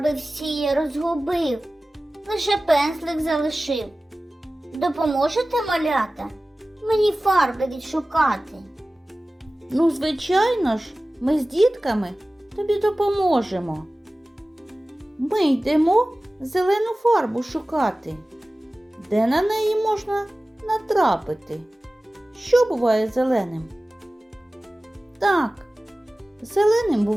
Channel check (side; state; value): both; normal; correlation 0.97